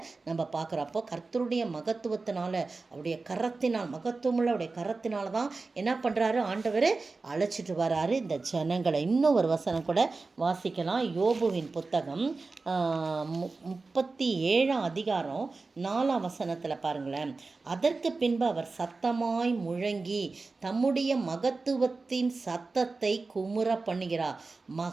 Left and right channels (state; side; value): quieter; left; 3.8 dB